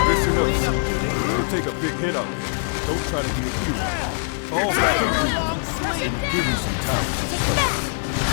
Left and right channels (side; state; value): right; silent; digital silence